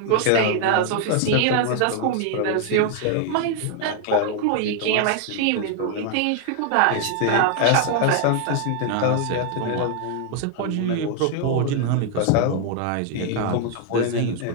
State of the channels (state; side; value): different; both; correlation 0.00